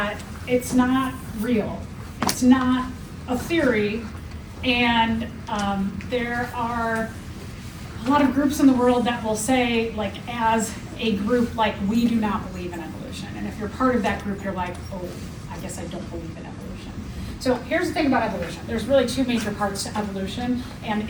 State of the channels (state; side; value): identical; both; correlation 1.00